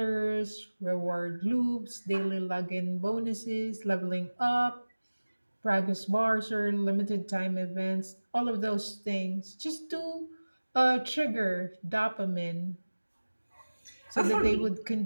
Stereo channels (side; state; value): both; inverted; correlation -1.00